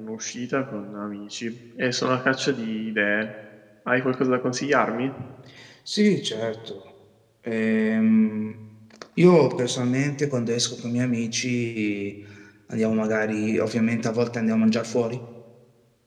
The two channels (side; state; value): both; identical; correlation 1.00